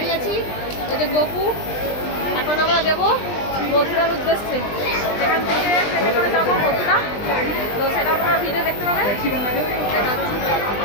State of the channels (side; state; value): right; late; 20 ms